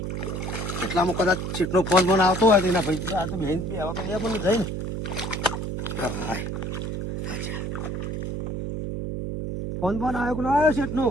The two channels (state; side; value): noise; right; hum, 4 dB below the sound